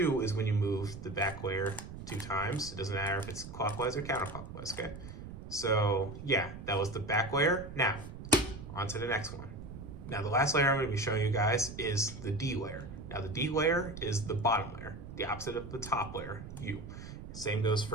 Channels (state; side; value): noise; right; rumble, 11 dB below the sound